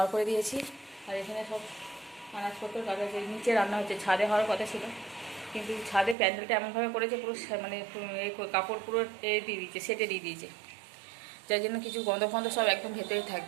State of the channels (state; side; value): drops out; left; at 6.2 s